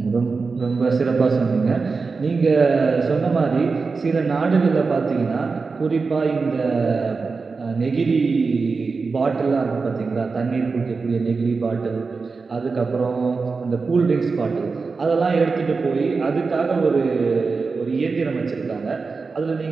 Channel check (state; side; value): quieter; left; 4.5 dB